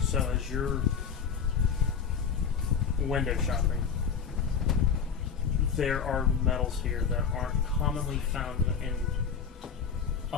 so as you're window shopping, there are metals here that aren't commonly found in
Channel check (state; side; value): quieter; right; 6.5 dB